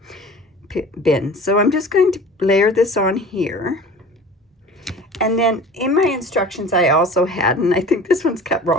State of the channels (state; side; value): normal; both; correlation 0.41